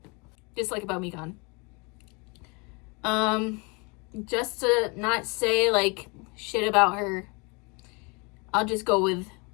Just like about Mikan. Just to not say, like, shit about her, I'll just go with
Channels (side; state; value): right; quieter; 30.3 dB